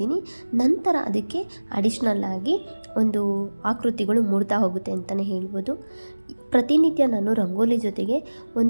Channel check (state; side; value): inverted; both; correlation -1.00